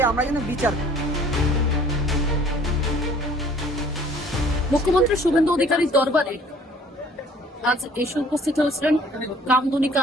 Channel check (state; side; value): normal; both; correlation 0.54